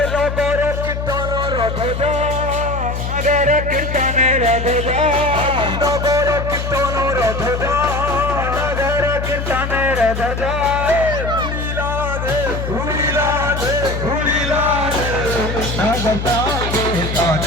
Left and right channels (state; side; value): noise; left; hum, 4 dB below the sound